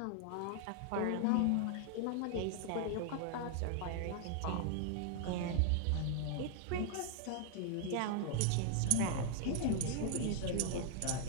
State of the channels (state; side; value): different; both; correlation 0.00